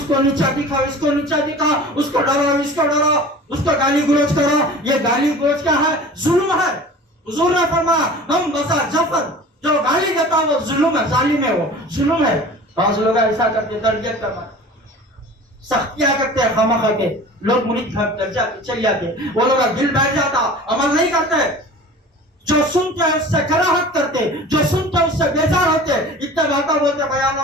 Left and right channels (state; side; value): normal; both; correlation 0.40